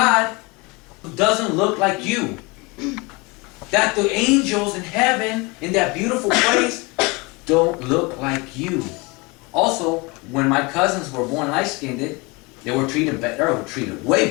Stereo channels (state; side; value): quieter; right; 26.6 dB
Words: doesn't look like you. That the angels in heaven, in that beautiful place, don't look like you. Also, when my cousins were born light-skinned, they were treated better, way